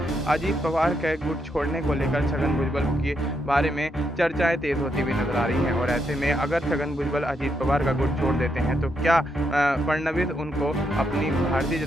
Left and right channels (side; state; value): both; normal; correlation 0.79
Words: अजीत पवार के गुट छोड़ने को लेकर छगन भुजबल के बारे में चर्चाएं तेज होती हुई नजर आ रही हैं। और ऐसे में अगर छगन भुजबल अजीत पवार का गुट छोड़ देते हैं तो क्या फडणवीस उनको अपनी भारतीय